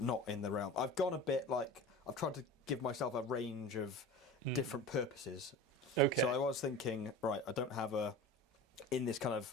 in the realm. I've gone a bit I've tried to give myself a range of different purposes. Okay. So I was thinking, right, I don't have in this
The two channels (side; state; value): both; normal; correlation 0.34